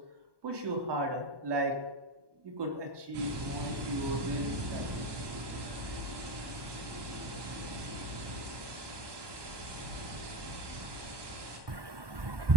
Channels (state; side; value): late; left; 1.2 ms